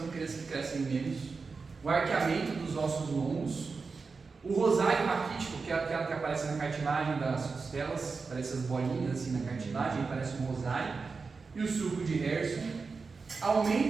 crianças que crescem menos, o arqueamento dos ossos longos, o rosário raquítico, que é aquela que aparece na cartilagem das costelas, parece as bolinhas assim na cartilagem, parece um rosário, e o sulco de Herson,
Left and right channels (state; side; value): quieter; left; 4.6 dB